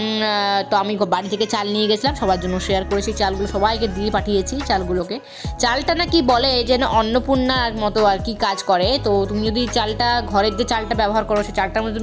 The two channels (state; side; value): identical; both; correlation 1.00